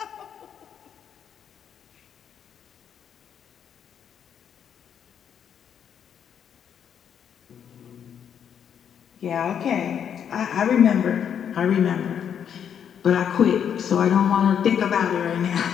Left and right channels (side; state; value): right; quieter; 8.4 dB